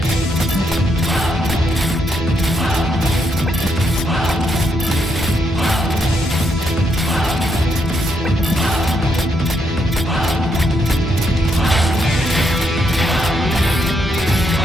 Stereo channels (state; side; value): normal; both; correlation 0.77